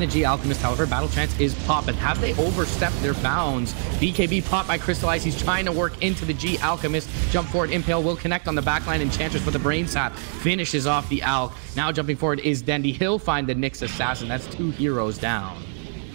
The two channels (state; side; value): silent; left; 60 dB below the other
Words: the G Alchemist, however, Battle Chance is popped, but have they overstepped their bounds? BKB popped by Crystallize. He's trying to work into the G Alchemist. Jump forward, Impale will connect on the backline. Enchantress with the Brain Sap finishes off the Alch. Now jumping forward is Dendi. He'll find the Nyx Assassin. That's 2 heroes down.